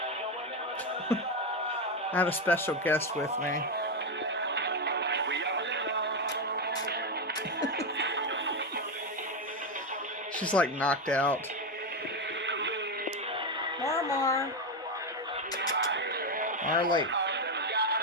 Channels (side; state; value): both; normal; correlation 0.09